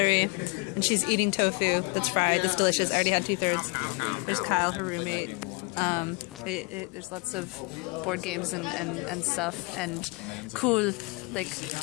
and she's eating tofu that's fried. That's delicious. I already had 2/3. There's Kyle, her roommate. There's lots of board games and stuff and cool like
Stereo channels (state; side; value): quieter; right; 28.8 dB